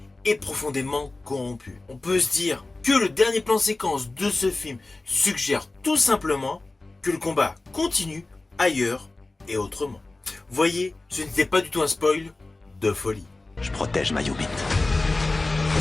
est profondément corrompu. On peut se dire que le dernier plan séquence de ce film suggère tout simplement que le combat continue ailleurs et autrement. Voyez, ce n'était pas du tout un spoil de folie. Je protège ma Yubit.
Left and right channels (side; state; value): right; quieter; 3.1 dB